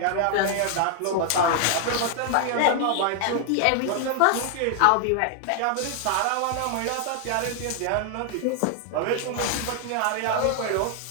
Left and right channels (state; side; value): different; both; correlation 0.00